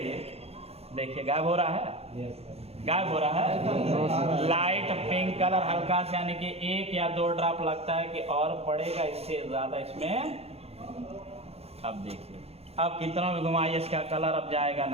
देखिए गायब हो रहा है। गायब हो रहा है। लाइट पिंक कलर हल्का से, यानी कि 1 या 2 ड्रॉप लगता है कि और पड़ेगा इससे ज्यादा इसमें। अब देखिए अब कितना भी घुमाइए इसका कलर अब जाएगा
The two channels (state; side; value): late; left; 0.29 ms